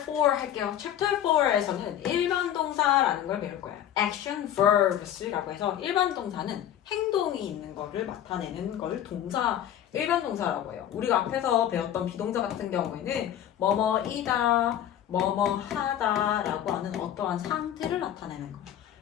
할게요. 챕터 4에서는 일반 동사라는 걸 배울 거예요. action verbs라고 해서 일반 동사는 행동이 있는 거를 나타내는 걸 동사, 일반 동사라고 해요. 우리가 앞에서 배웠던 비동사 같은 경우에는 뭐뭐이다, 뭐뭐하다 라고 하는 어떠한 상태를 나타내는 거.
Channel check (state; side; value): quieter; right; 10.8 dB